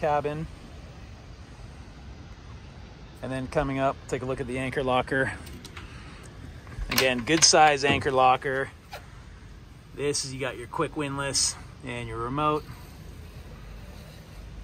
And then coming up, take a look at the anchor locker. Again, good size anchor locker. This is, you got your quick windlass and your remote.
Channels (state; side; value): identical; both; correlation 1.00